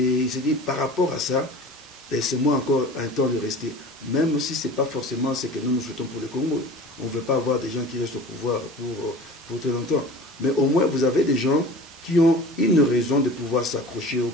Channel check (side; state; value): both; normal; correlation 0.39